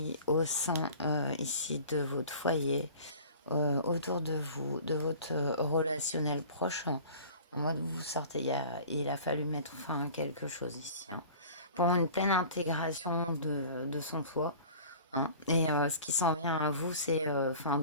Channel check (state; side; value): inverted; both; correlation -0.43